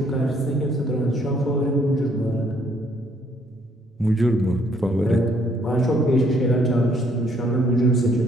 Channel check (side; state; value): both; normal; correlation 0.66